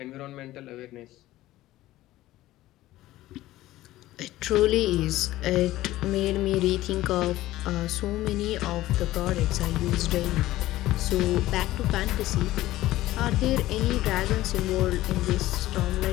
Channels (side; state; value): right; quieter; 16.0 dB